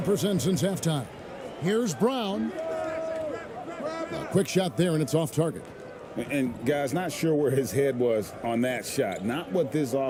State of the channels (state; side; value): identical; both; correlation 1.00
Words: since halftime. Here's Brown. A quick shot there, and it's off target. And guys, not sure where his head was on that shot. Not what this